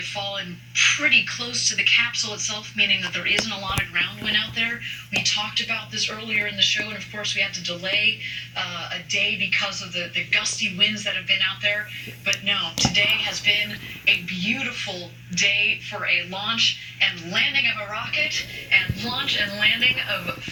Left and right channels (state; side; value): identical; both; correlation 1.00